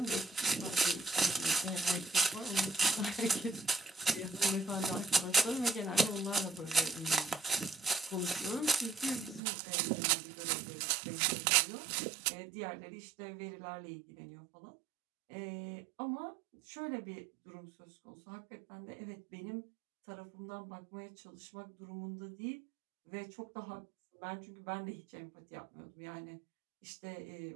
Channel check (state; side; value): drops out; left; at 9.4 s